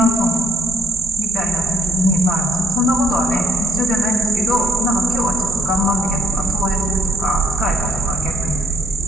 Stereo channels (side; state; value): both; normal; correlation 0.68